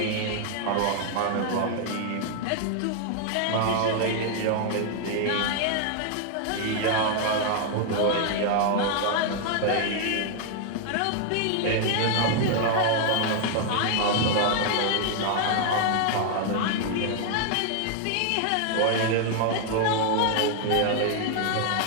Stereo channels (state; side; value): different; both; correlation 0.00